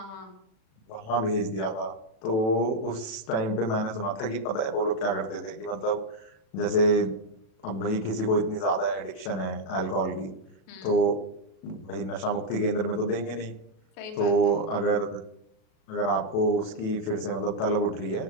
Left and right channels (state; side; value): late; right; 37 ms